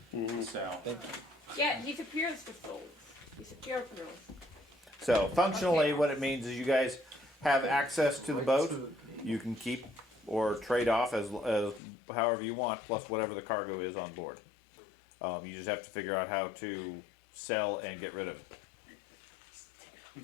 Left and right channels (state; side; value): drops out; right; at 11.8 s